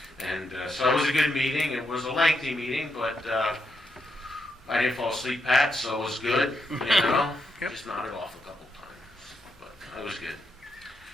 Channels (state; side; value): normal; both; correlation 0.81